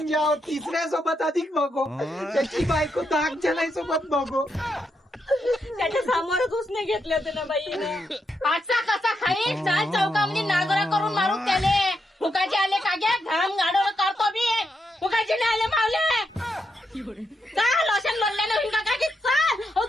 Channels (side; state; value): both; normal; correlation 0.82